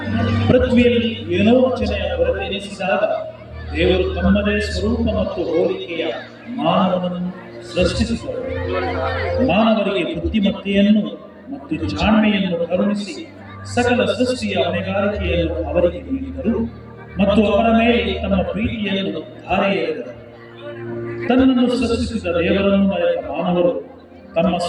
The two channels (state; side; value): identical; both; correlation 1.00